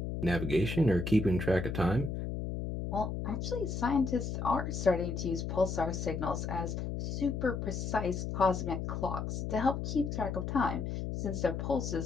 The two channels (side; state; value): left; noise; hum, 3 dB below the sound